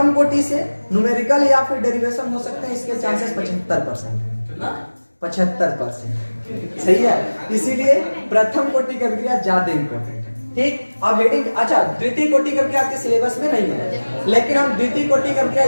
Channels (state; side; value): inverted; both; correlation -1.00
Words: कोटि से न्यूमेरिकल या फिर डेरिवेशन हो सकते हैं, इसके चांसेस 75%। 75%। सही है, इसीलिए प्रथम कोटि की अभिक्रिया ज्यादा इंपॉर्टेंट है। ठीक, अब हेडिंग, अच्छा द्वितीय कोटि की अभिक्रिया आपके सिलेबस में नहीं है, लेकिन हम द्वितीय कोटि की अभिक्रिया